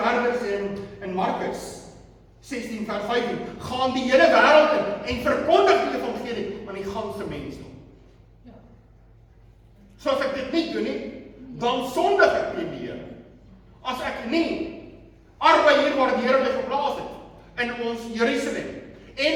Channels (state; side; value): identical; both; correlation 1.00